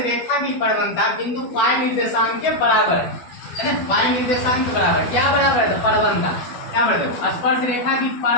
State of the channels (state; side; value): late; right; 12 ms